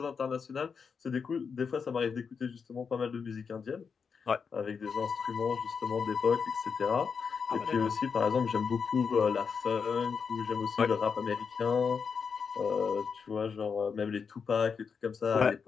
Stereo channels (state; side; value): quieter; right; 5.9 dB